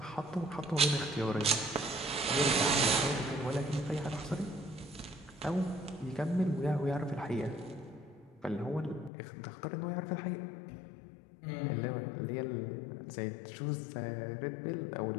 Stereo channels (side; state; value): right; drops out; at 9.1 s